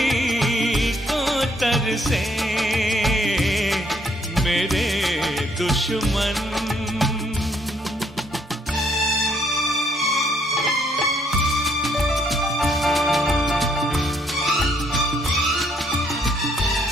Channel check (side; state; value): both; normal; correlation 0.68